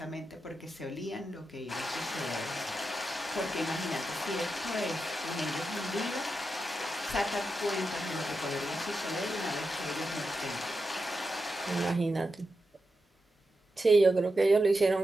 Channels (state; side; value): normal; both; correlation 0.88